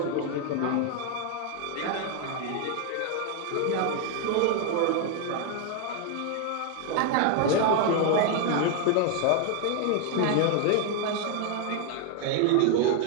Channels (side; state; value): both; different; correlation 0.01